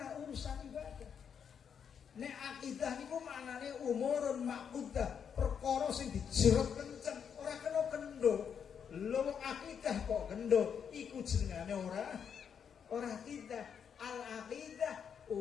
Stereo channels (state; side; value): quieter; right; 7.5 dB